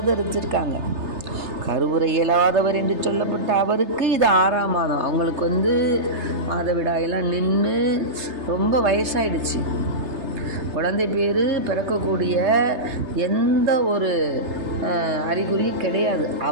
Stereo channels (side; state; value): left; late; 3.3 ms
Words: கருவுரை இயலாதவர் என்று சொல்லப்பட்ட அவருக்கு இது 6ஆம் மாதம். அவங்களுக்கு மாதவிடாயெல்லாம் நின்று ரொம்ப வயசாயிடுச்சு. குழந்தை பேர் பிறக்கக்கூடிய எந்த ஒரு அறிகுறியும் கிடையாது.